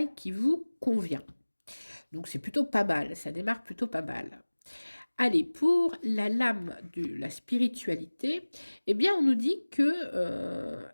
qui vous convient. Donc c'est plutôt pas mal, ça démarre plutôt pas mal. Allez, pour la lame de la spiritualité, eh bien, on nous dit que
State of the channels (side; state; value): both; inverted; correlation -1.00